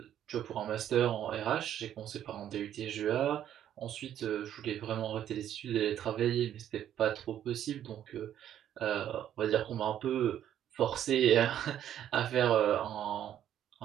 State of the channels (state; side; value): quieter; left; 10.7 dB